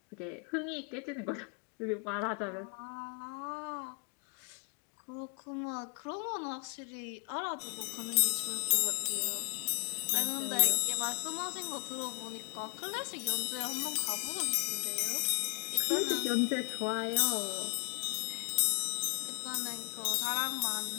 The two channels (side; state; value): right; quieter; 32.1 dB